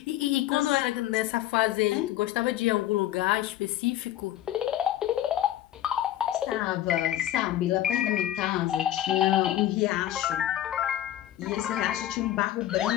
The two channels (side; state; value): right; quieter; 12.9 dB